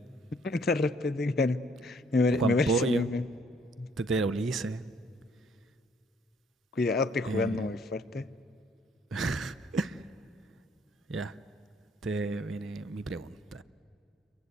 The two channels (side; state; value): both; normal; correlation 0.63